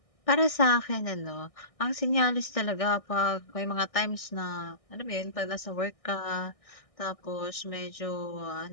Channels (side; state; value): right; late; 1.6 ms